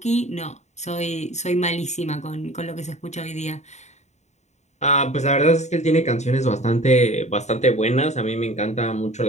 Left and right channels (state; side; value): late; right; 0.33 ms